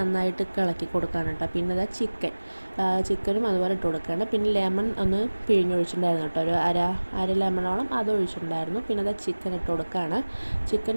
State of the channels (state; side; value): inverted; both; correlation -1.00